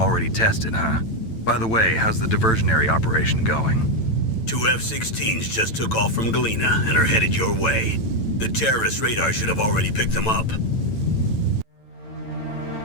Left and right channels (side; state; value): right; late; 9.0 ms